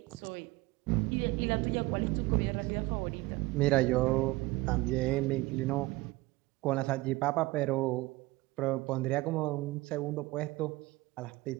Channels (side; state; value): left; quieter; 20.6 dB